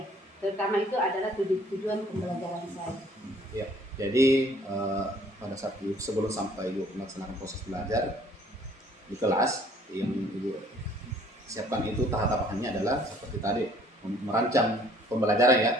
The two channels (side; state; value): both; normal; correlation 0.58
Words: Terutama itu adalah tujuan pembelajaran saya. Iya. Jadi pada saat sebelum sampai Ibu melaksanakan proses belajar di kelas, yang Ibu siapkan itu tahapannya adalah seperti tadi, merancang pembelajaran ya.